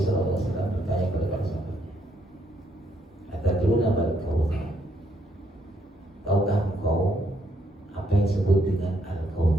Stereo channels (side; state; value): both; normal; correlation 0.73